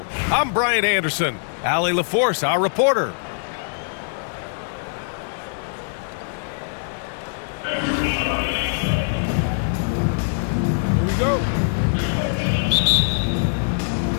I'm Brian Anderson. Allie LaForce, our reporter. Here we go.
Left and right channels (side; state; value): right; silent; digital silence